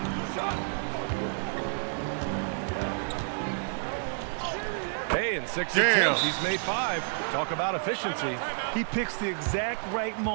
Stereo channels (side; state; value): left; silent; digital silence